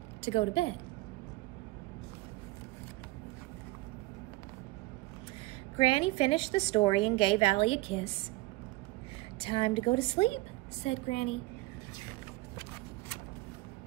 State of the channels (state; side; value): quieter; left; 21.1 dB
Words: to go to bed. Granny finished the story and gave Allie a kiss. "Time to go to sleep," said Granny.